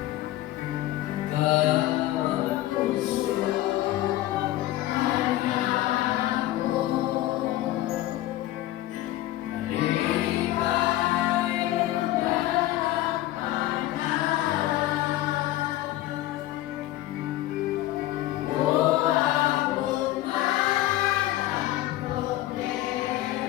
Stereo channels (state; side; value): quieter; right; 15.4 dB